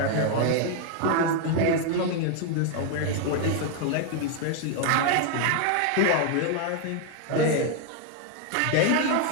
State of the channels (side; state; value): both; different; correlation 0.00